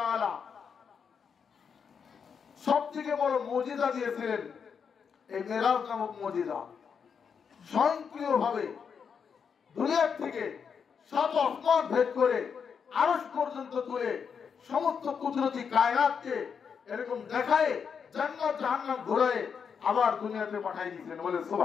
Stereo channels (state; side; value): quieter; right; 6.6 dB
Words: সবথেকে বড় মুজিজা দিয়েছিলেন এই মেরাজ নামক মুজিজা। স্বয়ংক্রিয়ভাবে দুনিয়ার থেকে 7 আসমান ভেদ করে আরশ পর্যন্ত তুলে সমস্ত কুদরতি কায়নাতকে এরকম দেখায়, জান্নাত জাহান্নাম ঘোরায় আবার দুনিয়াতে পাঠিয়ে দিয়েছেন। বলে